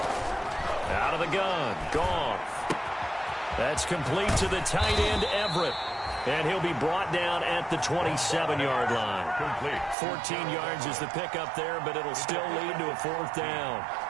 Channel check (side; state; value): left; drops out; at 10.0 s